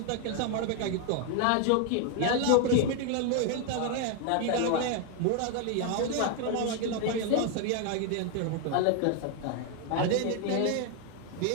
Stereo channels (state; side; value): different; both; correlation 0.01